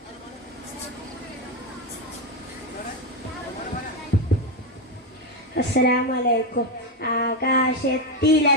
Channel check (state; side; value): normal; both; correlation 0.09